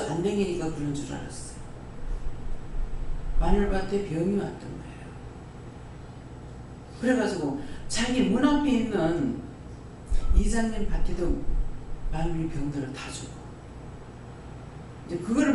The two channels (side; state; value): both; identical; correlation 1.00